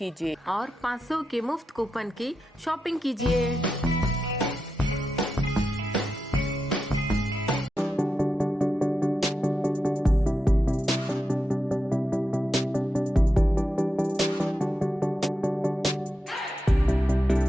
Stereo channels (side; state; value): both; normal; correlation 0.88